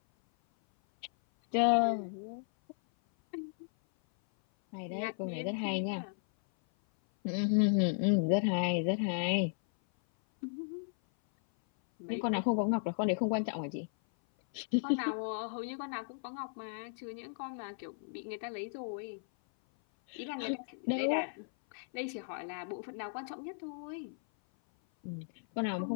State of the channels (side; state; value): right; silent; 54 dB below the other